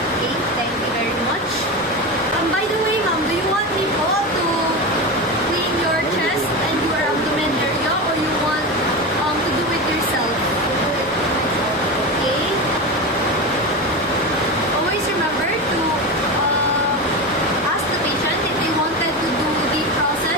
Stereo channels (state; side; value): normal; both; correlation 0.21